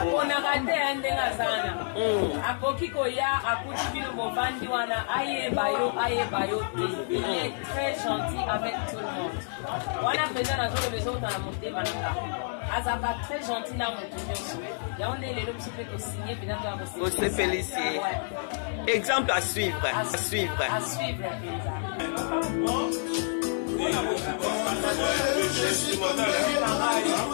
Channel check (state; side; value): silent; right; 59 dB below the other